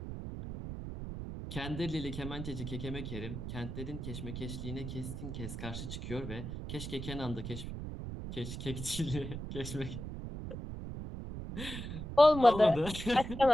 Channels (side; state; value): right; noise; rumble, 7 dB below the sound